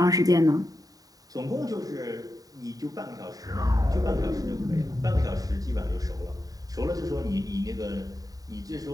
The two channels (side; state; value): left; late; 0.18 ms